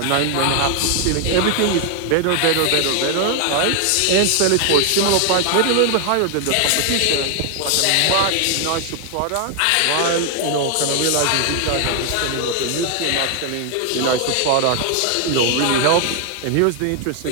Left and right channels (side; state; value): both; different; correlation 0.00